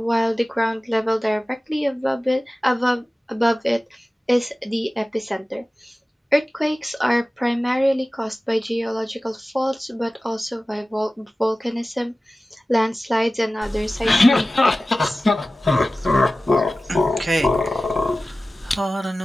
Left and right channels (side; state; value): both; normal; correlation 0.96